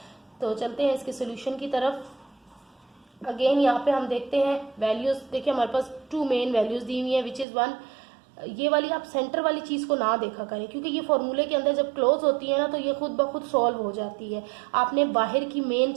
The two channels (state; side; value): drops out; left; at 7.5 s